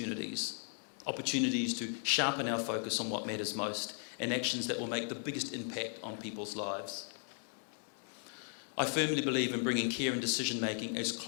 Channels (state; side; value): silent; right; 53 dB below the other